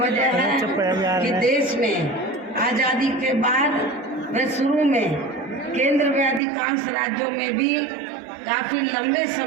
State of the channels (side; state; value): left; drops out; at 6.4 s